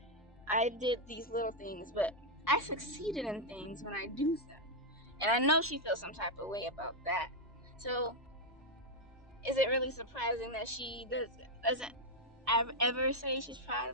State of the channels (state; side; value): normal; both; correlation 0.00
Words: I did these little things, but I succeeded in things when I do them. And I know she feels some type of way about that. So is it really surprising that she doesn't ever say she's proud